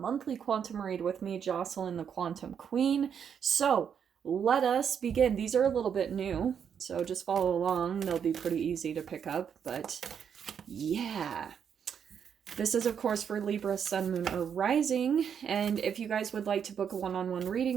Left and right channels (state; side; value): quieter; left; 7.7 dB